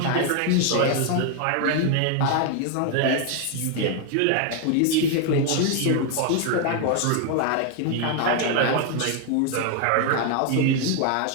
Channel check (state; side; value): different; both; correlation 0.01